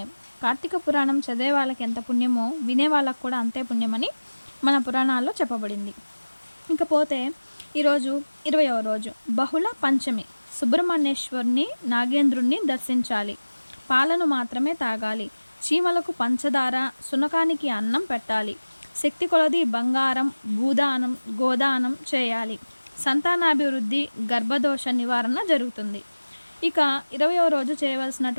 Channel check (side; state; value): both; inverted; correlation -1.00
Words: కార్తీక పురాణం చదివే వాళ్ళకి ఎంత పుణ్యమో వినే వాళ్ళకు కూడా అంతే పుణ్యమని మన పురాణాల్లో చెప్పబడింది. ఇంకపోతే ఈరోజు 20వ రోజు బహుళ పంచమి. సుబ్రహ్మణ్యేశ్వరుని నాగేంద్రుణ్ణి దర్శించాలి. పాలను మాత్రమే తాగాలి. చీమలకు పంచదార, సునకానికి అన్నం పెట్టాలి. శక్తి కొలది బంగారం, భూదానం, గోదానం చేయాలి. సంతానాభివృద్ధి, గర్భదోష నివారణ జరుగుతుంది. ఇక 20వ రోజు